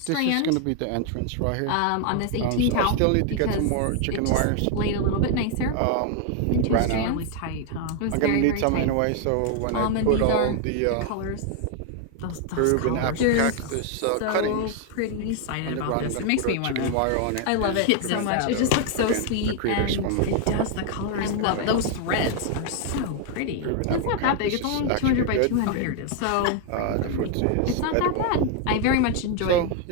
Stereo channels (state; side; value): different; both; correlation 0.00